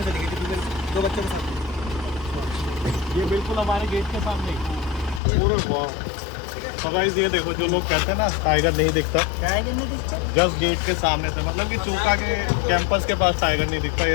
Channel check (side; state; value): right; drops out; at 5.2 s